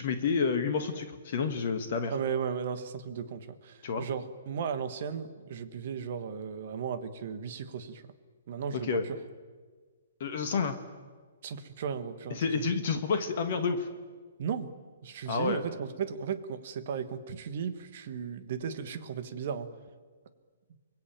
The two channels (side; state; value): both; inverted; correlation -0.50